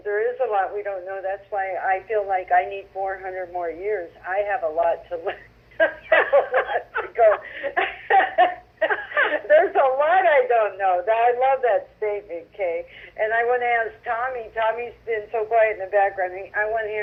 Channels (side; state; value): both; identical; correlation 1.00